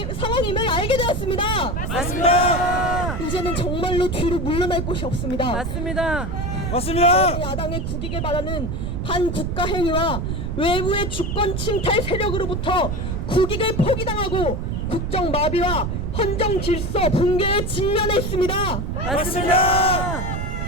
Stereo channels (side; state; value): right; noise; rumble, 2 dB below the sound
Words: 알게 되었습니다. 맞습니다. 이제는 정말로 뒤로 물러날 곳이 없습니다. 맞습니다. 맞습니다. 야당의 국익을 바라는 반국가 행위와 외부의 주권 침탈 세력으로부터 국익을 포기당하고 국정 마비와 헌정 질서 붕괴에 직면해 있습니다. 맞습니다.